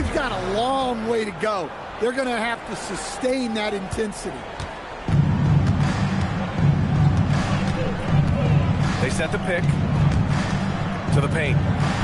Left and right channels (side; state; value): both; identical; correlation 1.00